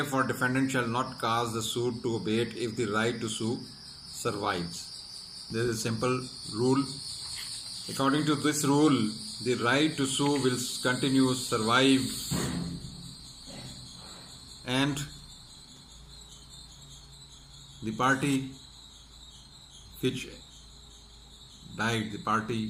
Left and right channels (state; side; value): identical; both; correlation 1.00